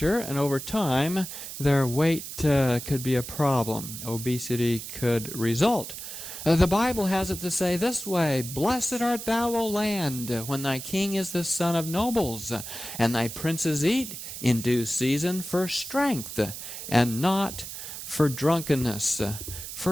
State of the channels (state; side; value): noise; right; hiss, 9 dB below the sound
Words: and over time, their weight could be a problem. Obesity could result. The Bible has it to say this way, "Blessed art thou, O land, when thy king is the son of nobles, and thy princes eat in due season for strength, and not for drunkenness."